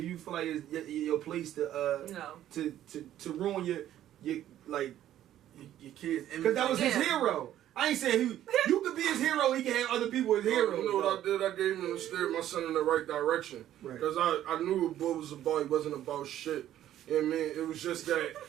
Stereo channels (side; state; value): left; quieter; 12.1 dB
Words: you feel like it's your place to No. to ruin your like Your kids. because that was his Yeah. hero. I ain't saying you could be his hero. He can have other people as heroes. You know what I did? I gave him and steered my son in the right direction. Right. Because I knew what boy was about. He wasn't about shit. You know what I mean? It was just that.